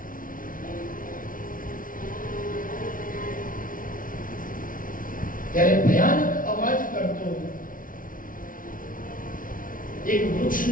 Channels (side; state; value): right; late; 0.39 ms